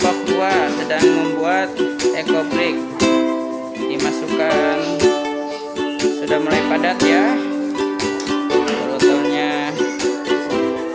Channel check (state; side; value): identical; both; correlation 1.00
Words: 2 sedang membuat ekobrik. Dimasukkan, sudah mulai padat ya botolnya.